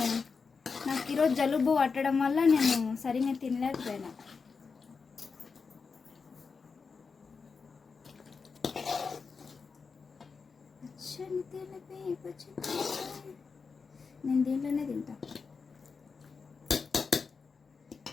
నాకు ఈరోజు జలుబు పట్టడం వల్ల నేను సరిగ్గా తినలేకపోయినా. పచ్చని తెలిపి పచ్చని నేను దీంట్లోనే తింటా.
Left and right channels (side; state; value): right; quieter; 5.1 dB